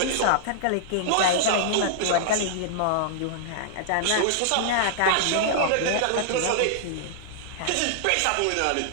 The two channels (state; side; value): different; both; correlation -0.01